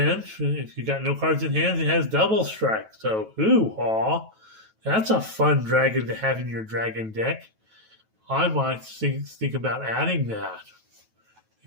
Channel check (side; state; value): left; late; 9.2 ms